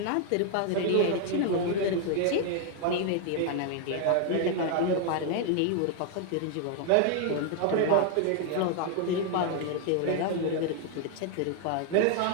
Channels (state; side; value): different; both; correlation 0.00